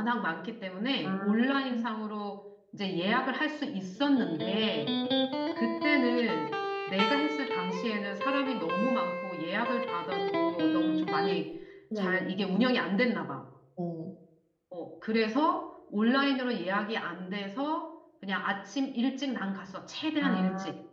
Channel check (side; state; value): both; identical; correlation 1.00